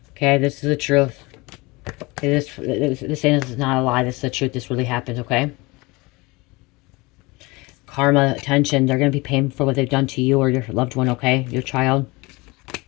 Okay, this is the truth. Okay, this is not a lie. This is the truth. This really happened, okay? Karma, attention. They're going to be paying for what they've done to you or your loved one, okay? Your child.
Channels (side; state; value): right; quieter; 24.1 dB